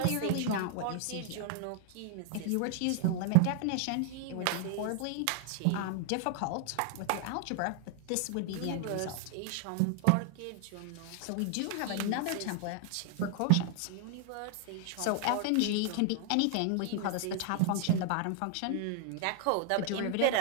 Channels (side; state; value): both; different; correlation 0.00